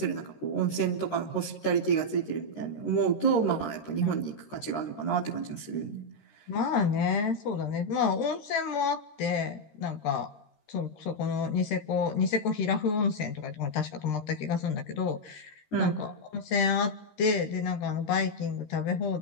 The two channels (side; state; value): right; late; 13 ms